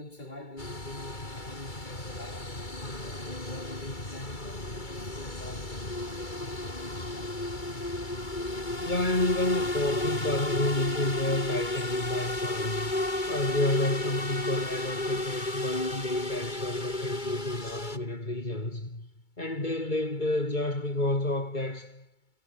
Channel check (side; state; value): right; late; 2.3 ms